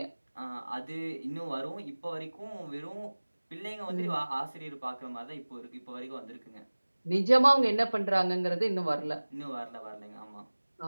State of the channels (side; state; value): both; inverted; correlation -1.00